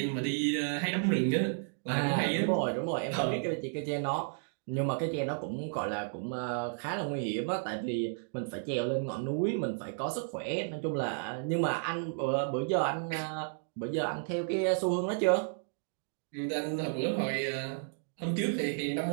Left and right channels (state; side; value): silent; left; digital silence